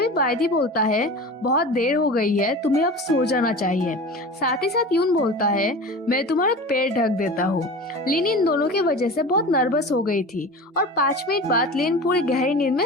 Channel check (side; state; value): both; normal; correlation 0.34